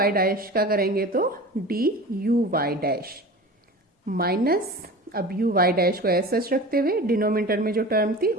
dash का करेंगे तो D you Y dash minus अब यू वाई डैश को ऐसे सच रखते हुए डिनोमिनेटर में जो टर्म थी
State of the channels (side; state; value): both; normal; correlation 0.35